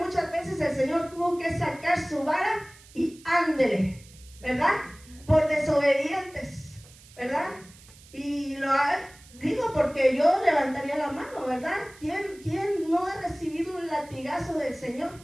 veces el Señor tuvo que sacar su vara y ándele, ¿verdad? Por desobedientes, ¿verdad? Y digo porque yo levantaría la mano, ¿verdad? ¿Quién no ha recibido un latigazo del Señor?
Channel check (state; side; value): noise; right; hiss, 23 dB below the sound